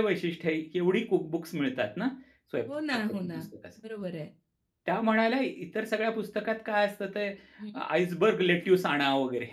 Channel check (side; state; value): both; identical; correlation 1.00